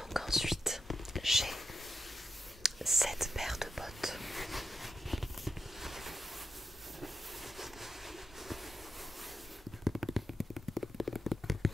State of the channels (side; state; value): both; normal; correlation 0.86